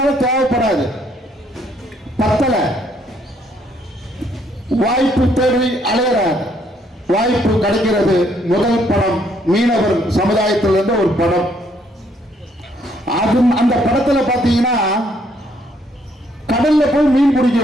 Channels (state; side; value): normal; both; correlation 0.69